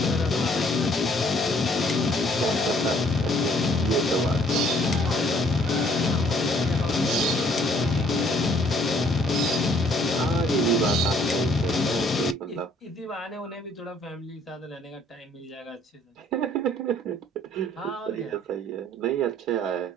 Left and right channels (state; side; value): normal; both; correlation 0.62